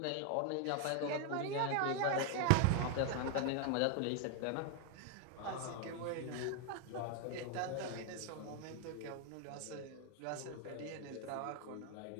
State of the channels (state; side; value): different; both; correlation 0.01